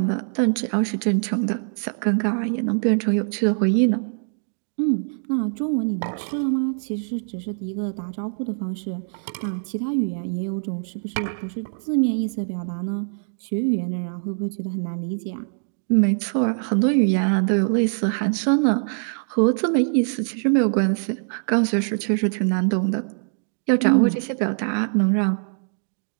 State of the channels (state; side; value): silent; left; digital silence